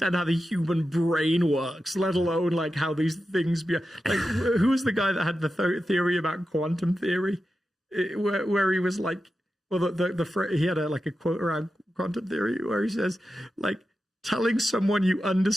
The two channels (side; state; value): both; normal; correlation 0.91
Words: how the human brain works, let alone like how these things be. Like, who was the guy that had the theory about quantum theory, where he was like, well, he had a quote around quantum theory where he says, like, telling someone you